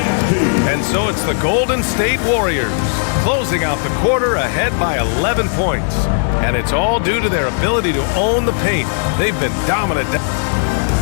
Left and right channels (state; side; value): silent; right; digital silence